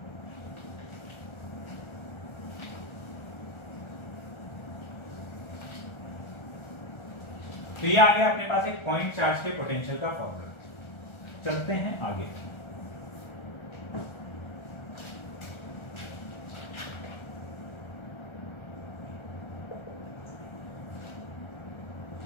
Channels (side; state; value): right; late; 1.4 ms